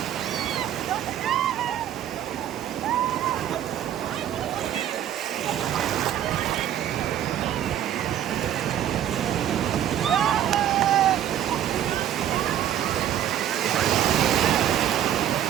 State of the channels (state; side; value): quieter; left; 11.0 dB